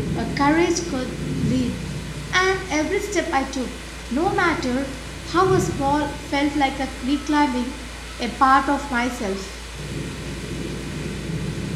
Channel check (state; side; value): identical; both; correlation 1.00